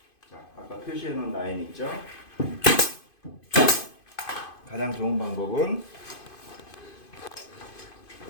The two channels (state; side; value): late; right; 2.5 ms